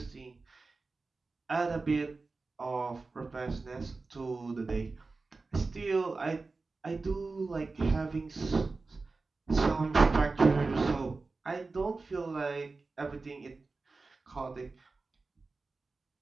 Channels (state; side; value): quieter; left; 3.8 dB